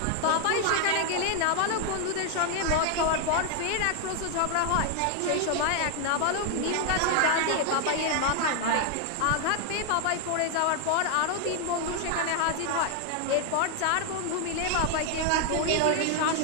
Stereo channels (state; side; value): different; both; correlation 0.00